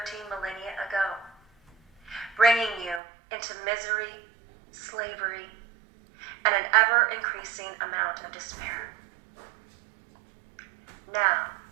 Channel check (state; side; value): drops out; left; at 3.0 s